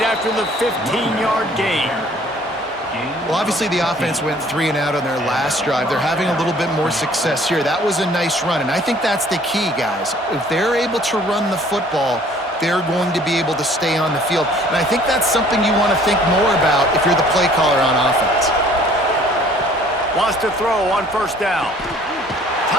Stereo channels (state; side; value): normal; both; correlation 0.55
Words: after the 15-yard gain. Well, obviously the offense went 3 and out on their last drive. They're having a little bit more success here. That was a nice run, and I think that's the key, guys. If they're able to run the football, they're going to be able to stay on the field. And I think that's something you want to think more about if you're the play caller on offense. Wants to throw on 1st down.